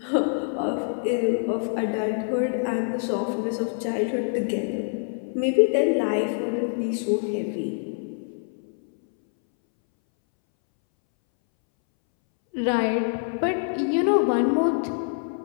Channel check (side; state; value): right; silent; 62 dB below the other